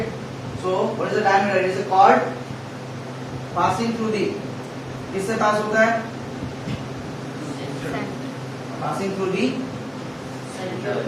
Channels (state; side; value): identical; both; correlation 1.00